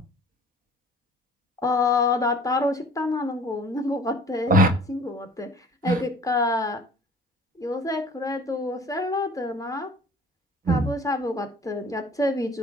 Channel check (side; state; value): both; normal; correlation 0.49